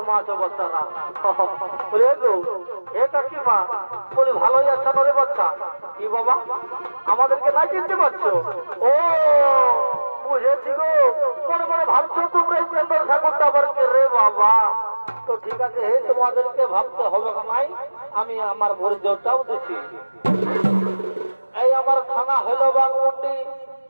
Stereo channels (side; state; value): both; inverted; correlation -1.00